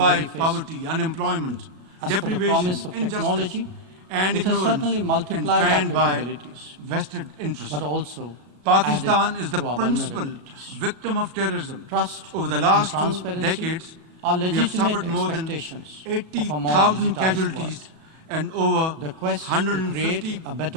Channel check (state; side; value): late; left; 37 ms